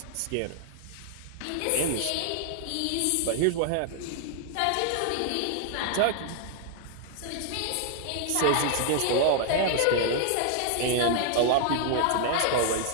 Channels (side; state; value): both; different; correlation 0.00